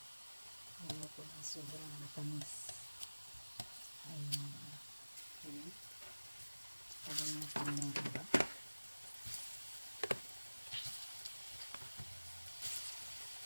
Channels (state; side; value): inverted; both; correlation -1.00